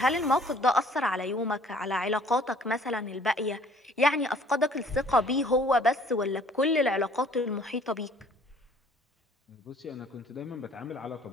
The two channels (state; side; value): normal; both; correlation 0.56